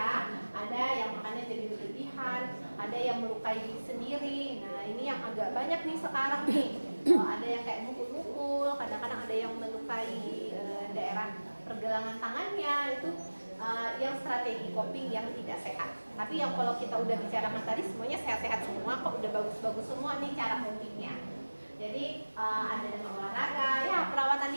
Ada yang makannya jadi berlebihan, ada yang melukai diri sendiri. Nah, ini yang agak banyak nih sekarang nih. Ada yang kayak mukul-mukul, kadang-kadang ada yang melukai daerah pergelangan tangannya. Itu yang strategi coping yang tidak sehat. Tapi yang kalau kita udah bicarakan tadi semuanya sehat-sehat semua, kok udah bagus-bagus semua nih cara copingnya. Jadi ada dengan olahraga, ya perawatan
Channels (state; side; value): inverted; both; correlation -1.00